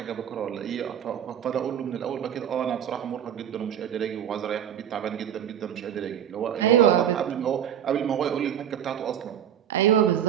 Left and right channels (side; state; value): left; quieter; 9.6 dB